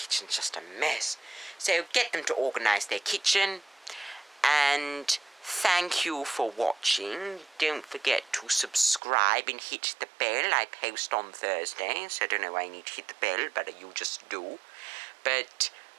just a mess. So get them to organise their kitchen, and thank you for watching. Don't forget to subscribe and hit the bell. I post on Thursdays. I don't know why I need to hit the bell, but you just do. But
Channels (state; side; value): drops out; left; at 9.0 s